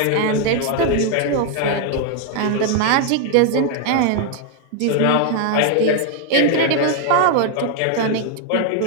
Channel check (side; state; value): both; different; correlation 0.00